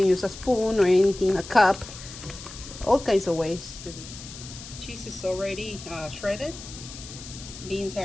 use a spoon or anything, a cup, all kinds of ways to do. Cheese is already shredded, beans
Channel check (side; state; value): left; noise; hiss, 14 dB below the sound